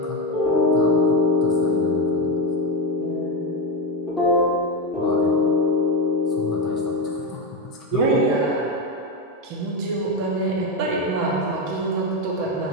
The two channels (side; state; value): both; normal; correlation 0.12